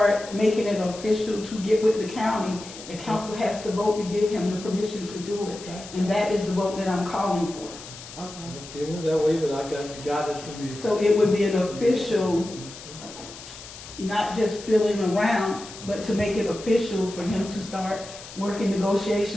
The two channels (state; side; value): noise; left; hiss, 15 dB below the sound